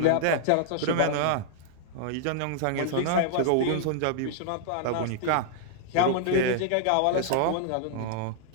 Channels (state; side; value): different; both; correlation -0.01